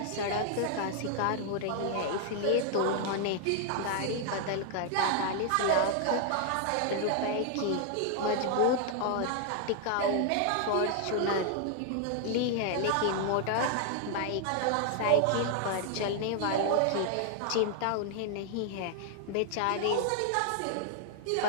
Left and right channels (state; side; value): different; both; correlation 0.00